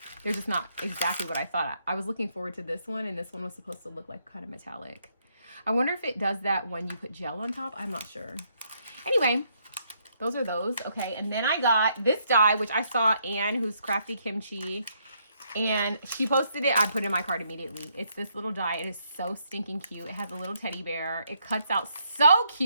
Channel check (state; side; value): inverted; both; correlation -0.74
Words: They're just not exactly what I thought. I was looking forward to this one, and this one was supposed to look like kind of metallic. I wonder if it does that when you put gel on top. I'm not sure. Anyway, those are those. Okay, and then I got this die, which I saw Anne, who's Crafty Kimchi, and she posted it. I put it in my cart immediately. It's this little die. It is so stinking cute. It has a little teddy bear. It cuts out so